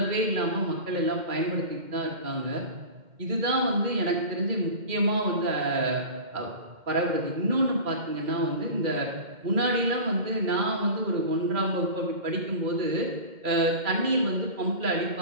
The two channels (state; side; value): late; left; 2.1 ms